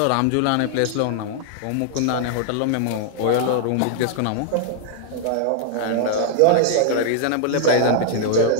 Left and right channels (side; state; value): both; different; correlation 0.00